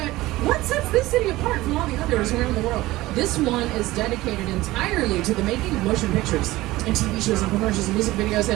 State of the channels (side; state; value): left; quieter; 18.2 dB